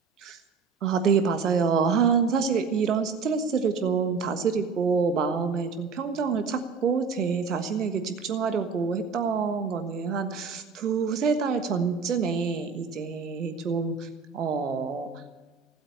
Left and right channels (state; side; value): quieter; left; 5.3 dB